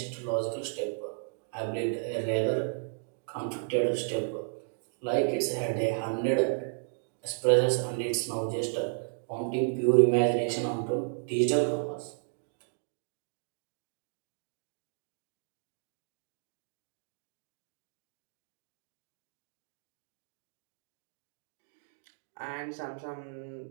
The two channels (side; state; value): left; silent; digital silence